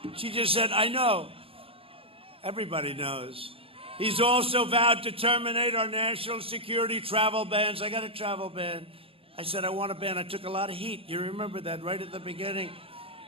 She just said, I know. Everybody knows. He's also vowed to terminate our national security travel bans. I got a travel ban. I said, I want a ban. I took a lot of heat. You remember that right at the beginning.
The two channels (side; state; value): left; late; 0.27 ms